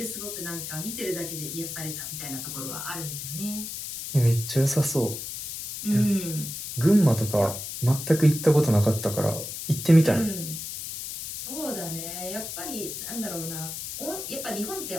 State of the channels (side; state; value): left; noise; hiss, 7 dB below the sound